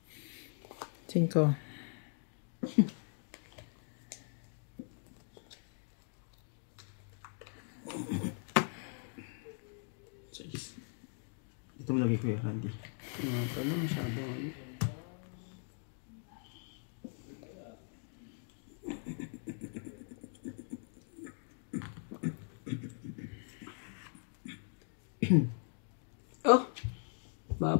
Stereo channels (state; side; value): silent; right; 51 dB below the other